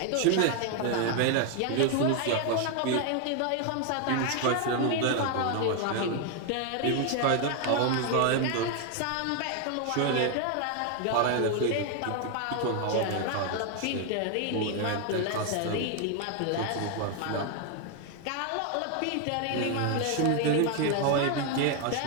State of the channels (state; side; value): different; both; correlation 0.01